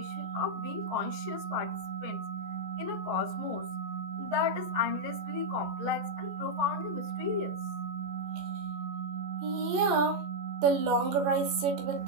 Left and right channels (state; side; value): late; left; 14 ms